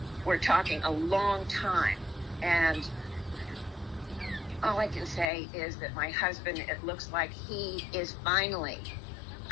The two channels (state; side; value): drops out; right; at 5.3 s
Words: We're talking a long time. And all I can say is that my husband, it looks like he is finally